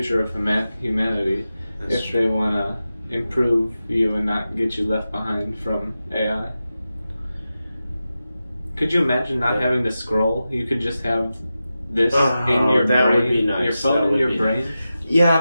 of humanity. That's if they want to improve you and not get you left behind from AI. Could you imagine not having to scroll? You could just have this in your that brain. Would be nice. Your phone in your brain. Yeah,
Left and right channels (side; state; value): both; inverted; correlation -0.92